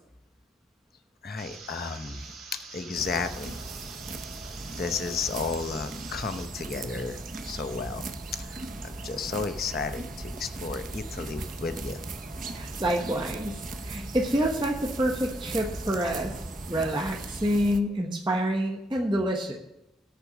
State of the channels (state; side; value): normal; both; correlation 0.68